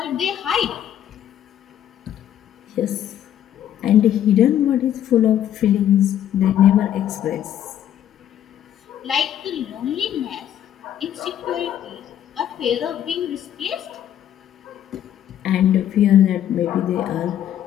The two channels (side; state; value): right; quieter; 10.7 dB